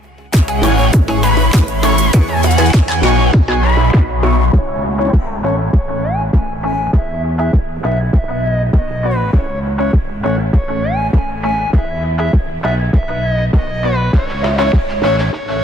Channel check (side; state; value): both; normal; correlation 0.72